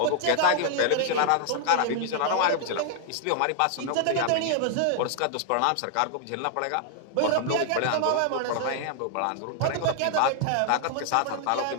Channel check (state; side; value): different; both; correlation 0.00